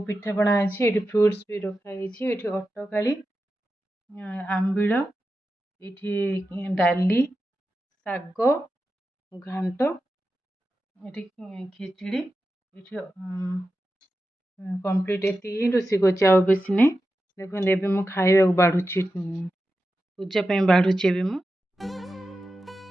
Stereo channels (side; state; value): both; normal; correlation 0.91